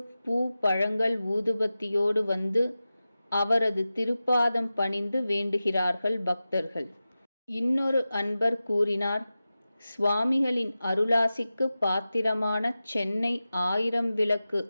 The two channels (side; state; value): both; inverted; correlation -0.94